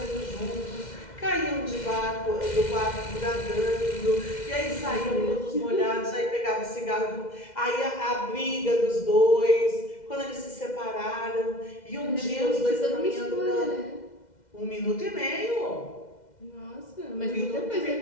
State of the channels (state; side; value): late; right; 2.1 ms